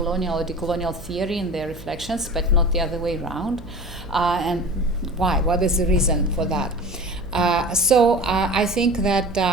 or decolonial theory in their reflections, but not the other way around, and why? What is the reason for that? So I think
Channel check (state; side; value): noise; right; hum, 18 dB below the sound